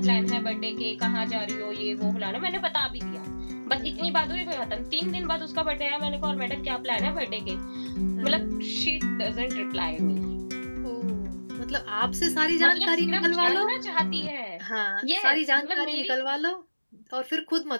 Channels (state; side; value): inverted; both; correlation -1.00